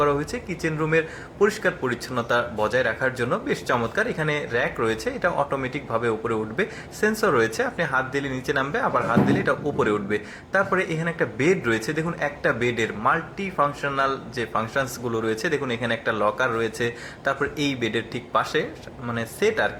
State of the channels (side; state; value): both; identical; correlation 1.00